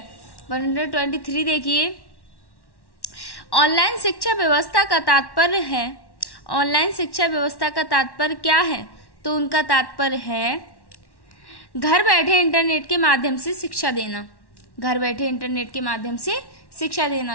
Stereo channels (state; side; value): late; right; 1.1 ms